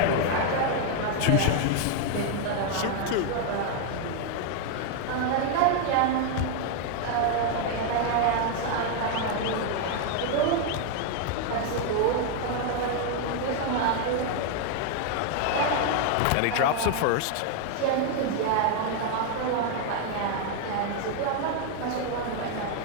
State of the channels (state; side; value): different; both; correlation 0.00